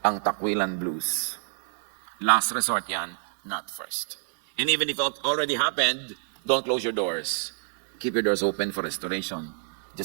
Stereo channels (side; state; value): left; silent; digital silence